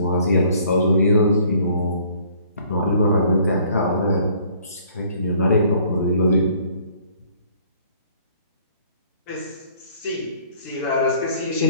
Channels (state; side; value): inverted; both; correlation -0.58